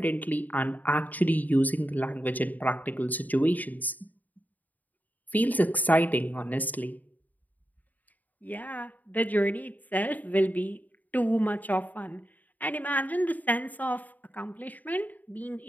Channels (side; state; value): right; late; 0.080 ms